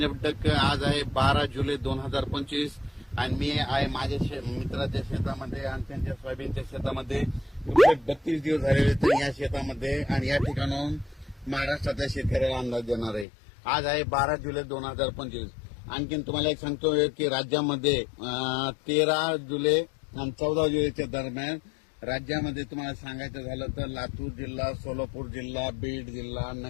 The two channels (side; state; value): right; drops out; at 13.2 s